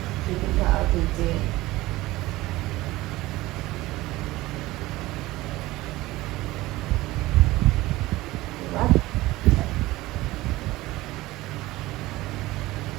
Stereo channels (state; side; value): quieter; left; 18.4 dB